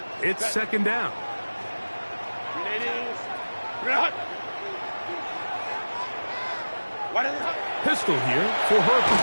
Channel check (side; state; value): both; inverted; correlation -1.00